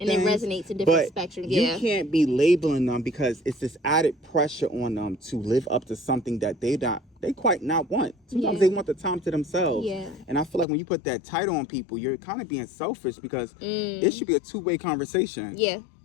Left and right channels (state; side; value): drops out; right; at 10.7 s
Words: things. And it resonates to different spectrums. You can't be labeling them because it's this added pressure on them to live up to something that they quite not want. Sometimes they want the time to themselves. Yeah. And I feel like when you put that title on people, you're kind of being selfish because it should be a two-way conversation. Yeah.